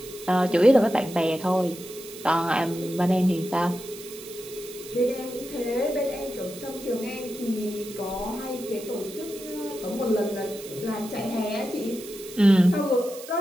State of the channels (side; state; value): right; noise; hiss, 15 dB below the sound